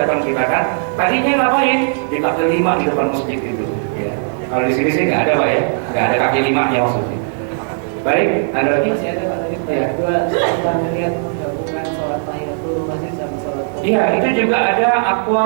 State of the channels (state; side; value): silent; left; digital silence